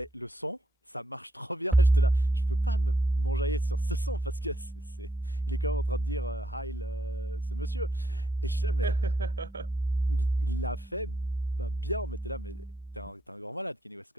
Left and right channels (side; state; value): both; normal; correlation 0.77